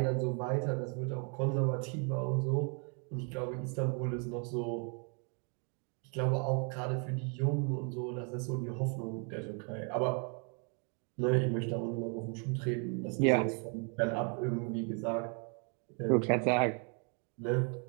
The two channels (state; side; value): quieter; left; 38.7 dB